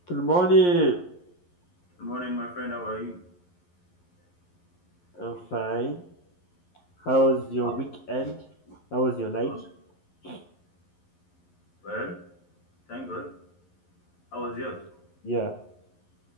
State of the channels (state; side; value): late; right; 11 ms